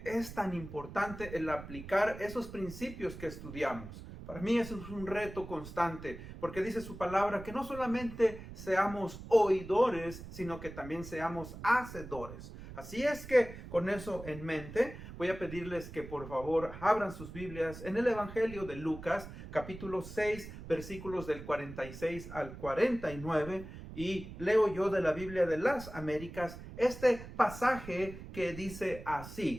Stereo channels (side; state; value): right; noise; rumble, 13 dB below the sound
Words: es tan importante el aplicar esos principios que estudiamos. Para mí eso es un reto constante, porque dice su palabra que no solamente seamos oidores, sino que también seamos hacedores. Así es que con eso en mente, voy a pedirles que por favor abran sus Biblias en el Evangelio de Lucas, capítulo 6, versículos del 46 al 49, y leo yo de la Biblia de las Américas este pasaje que dice